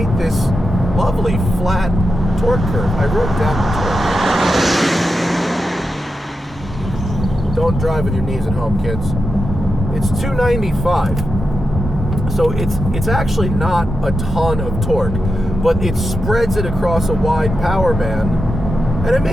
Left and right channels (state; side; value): normal; both; correlation 0.89